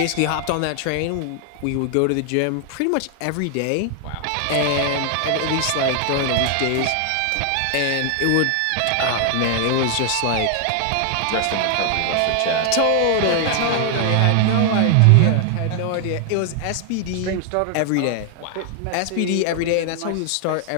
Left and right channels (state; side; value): different; both; correlation 0.00